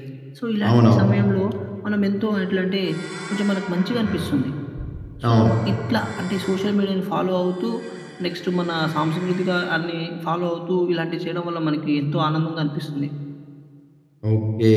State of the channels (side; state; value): both; identical; correlation 1.00